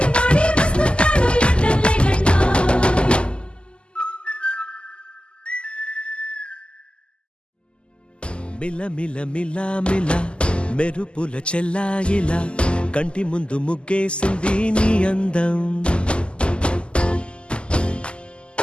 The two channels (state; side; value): late; right; 0.051 ms